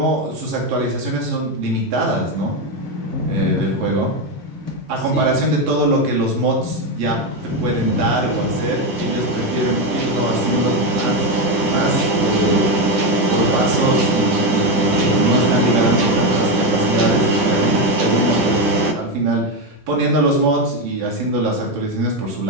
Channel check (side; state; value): left; late; 10 ms